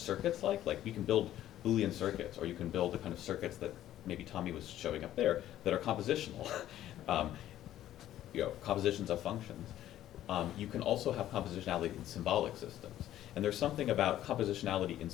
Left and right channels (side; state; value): right; quieter; 12.7 dB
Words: you can build Boolean circuits, or you can build the kind of circuits that maybe Tommy was showing up there that are compositional, compositions of functions. You can also have compositionality in symbolic systems. And there's something about compositionality in